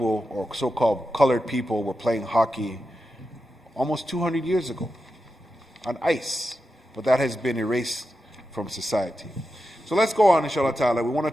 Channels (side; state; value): both; normal; correlation 0.90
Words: or so-called colored people were playing hockey almost 200 years ago on ice, but that has been erased from society. So let's go on, inshallah ta'ala. We want to